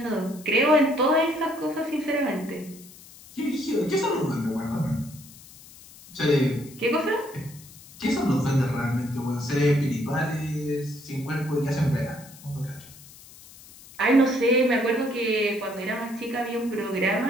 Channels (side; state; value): left; noise; hiss, 20 dB below the sound